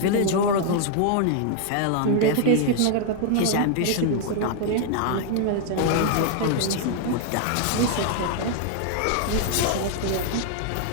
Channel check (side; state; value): both; different; correlation 0.00